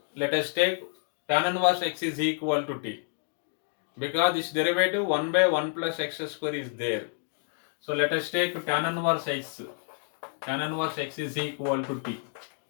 let us take tan inverse x is equal to t. Because this derivative 1 by 1 plus x square is there. So let us take tan inverse x. Tan inverse x is equal to t.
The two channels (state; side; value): silent; right; 57 dB below the other